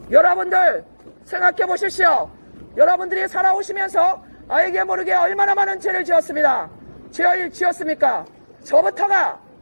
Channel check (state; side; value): inverted; both; correlation -1.00